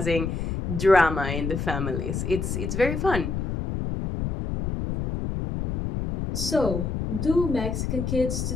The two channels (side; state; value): left; noise; rumble, 2 dB below the sound